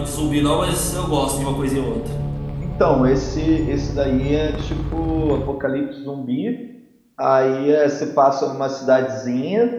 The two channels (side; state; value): both; identical; correlation 1.00